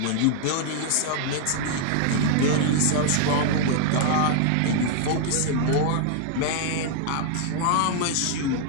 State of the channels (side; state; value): both; different; correlation 0.00